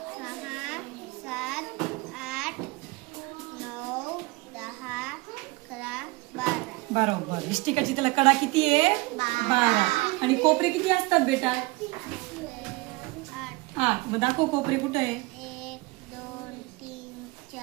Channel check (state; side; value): quieter; left; 23.7 dB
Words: 6 7 8 9 10 11 12. बरोबर. इष्टिका चिठीला कडा किती आहे? 12. आणि कोपरे किती असतात बेटा? 8. मग दाखव कोपरे कुठे आहे? 1 2 3